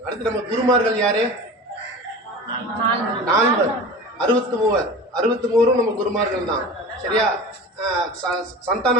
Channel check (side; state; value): both; normal; correlation 0.34